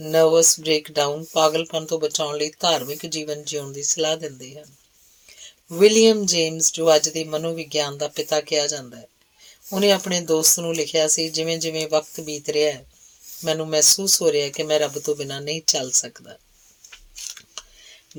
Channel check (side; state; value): both; identical; correlation 1.00